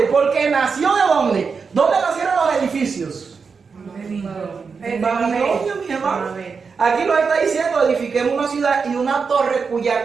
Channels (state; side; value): quieter; left; 5.3 dB